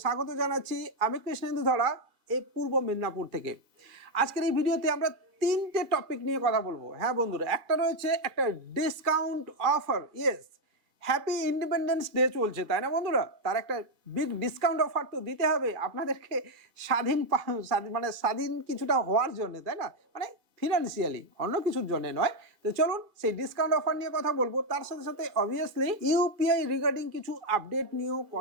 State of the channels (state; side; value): late; left; 2.2 ms